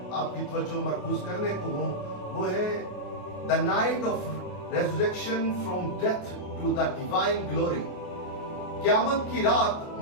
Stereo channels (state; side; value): late; right; 28 ms